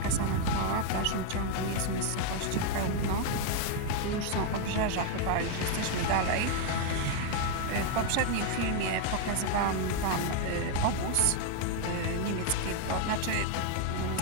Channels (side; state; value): both; different; correlation 0.01